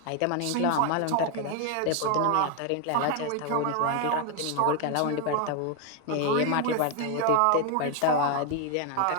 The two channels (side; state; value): both; different; correlation 0.01